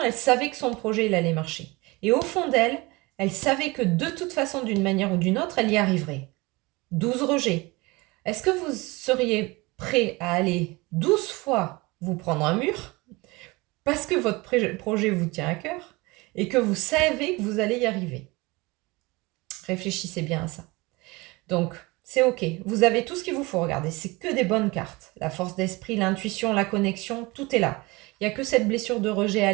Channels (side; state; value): left; quieter; 23.8 dB